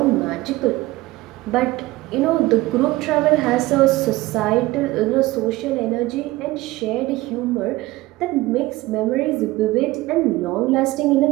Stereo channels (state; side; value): quieter; left; 18.8 dB